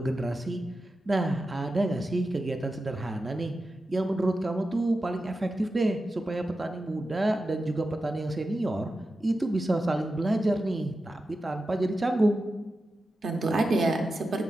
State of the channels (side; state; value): both; normal; correlation 0.91